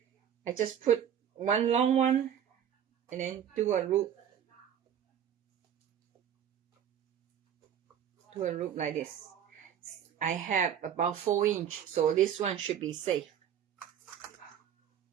I just put one long one and then do a loop. Do a loop like this. I have about 4 inch, so this one should be safe.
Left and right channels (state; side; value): quieter; left; 9.3 dB